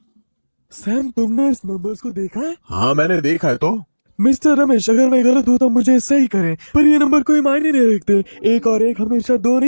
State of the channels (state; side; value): inverted; both; correlation -1.00